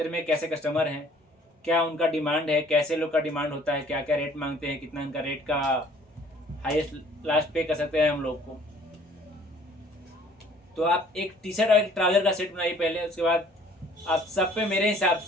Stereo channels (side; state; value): both; normal; correlation 0.56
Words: में कैसे कस्टमर हैं, क्या उनका डिमांड है, कैसे लोग का डिमांड होता है, क्या क्या रेट मांगते हैं, कितना उनका रेट का हाईएस्ट लास्ट पे कर सकते हैं हम लोग को। तो आप एक टी शर्ट और एक ट्राउजर का सेट बनाइए पहले, उसके बाद आप सब पे मेरे हिसाब